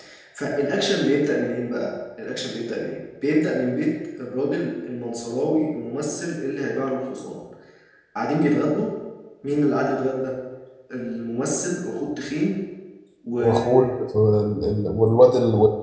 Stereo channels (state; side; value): identical; both; correlation 1.00